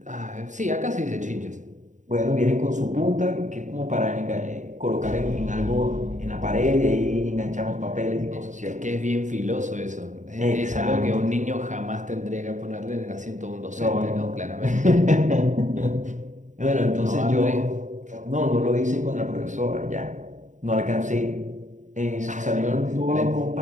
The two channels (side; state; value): left; late; 0.36 ms